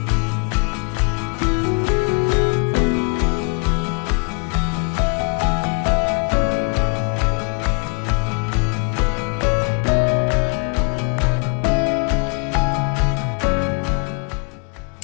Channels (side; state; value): right; quieter; 36.6 dB